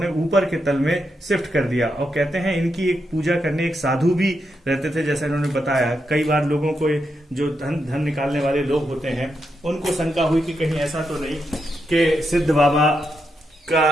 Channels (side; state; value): both; normal; correlation 0.84